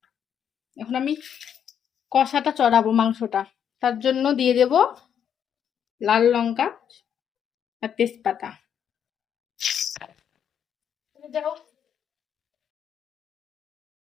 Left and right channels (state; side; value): quieter; right; 8.6 dB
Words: এখন আমি কষাটা চড়াবো মাংসটা, তার জন্য দিয়ে দেব লাল লঙ্কা আর তেজপাতা। যাও,